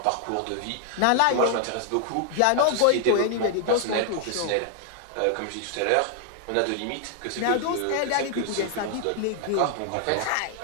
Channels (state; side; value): different; both; correlation 0.00